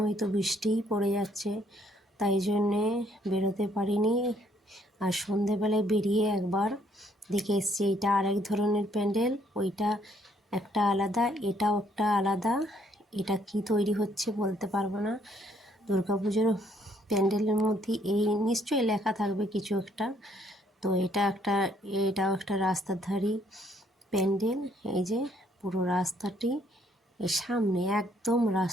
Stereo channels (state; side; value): normal; both; correlation 0.67